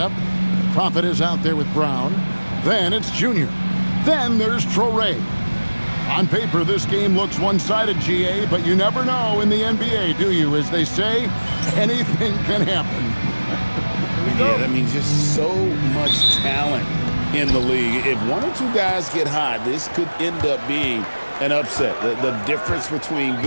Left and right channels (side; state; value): both; inverted; correlation -1.00